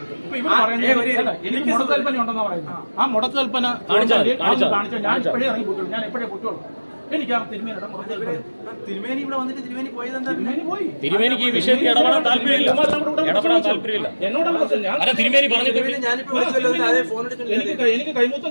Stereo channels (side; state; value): both; inverted; correlation -1.00